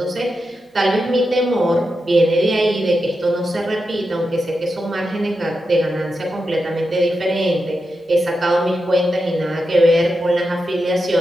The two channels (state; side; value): normal; both; correlation 0.88